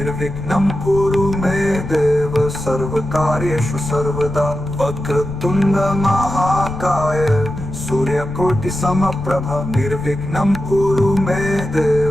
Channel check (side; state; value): left; noise; rumble, 11 dB below the sound